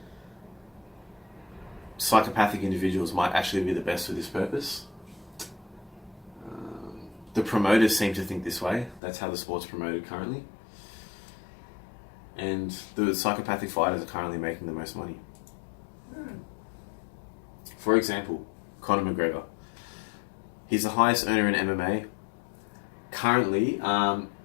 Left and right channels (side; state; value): right; drops out; at 9.0 s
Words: Psychopathic individuals might actually be the best for this purpose. The promoters seem to think this way. That's how the sport's promoted currently. And the psychopathic fighters are currently making the most money. For example, Conor McGregor. He's the highest earner in MMA. Currently,